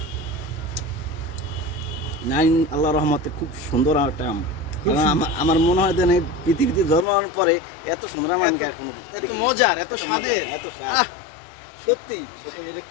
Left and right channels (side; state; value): right; drops out; at 7.1 s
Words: নাইন আল্লাহর রহমতে খুব সুন্দর একটা আম। আমার মনে হয় যে পৃথিবীতে জন্মানোর পরে এত সুন্দর আম আমি এত মজার, এত স্বাদের, এত স্বাদ, সত্যি